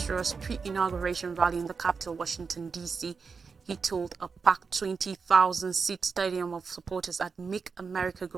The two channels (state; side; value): quieter; left; 5.2 dB